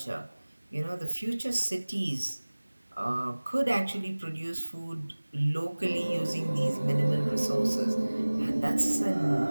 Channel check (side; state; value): both; inverted; correlation -1.00